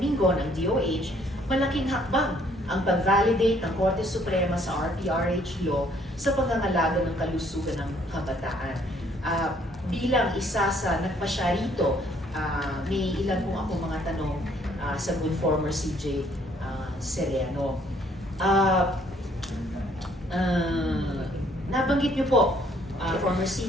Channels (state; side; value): normal; both; correlation 0.64